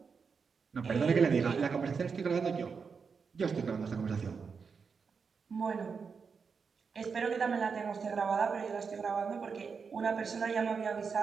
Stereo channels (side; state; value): left; quieter; 5.6 dB